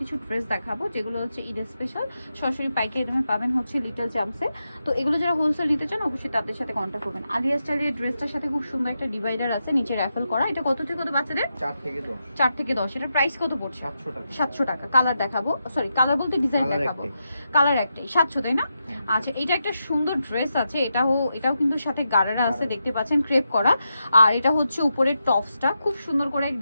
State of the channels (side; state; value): both; inverted; correlation -0.87